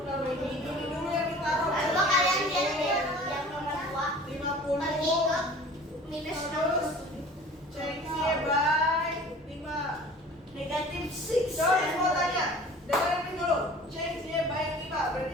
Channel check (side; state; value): both; normal; correlation 0.45